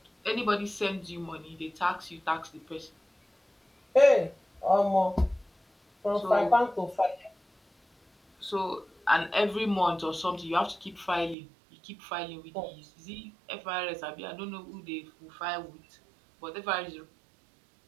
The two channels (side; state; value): left; drops out; at 11.4 s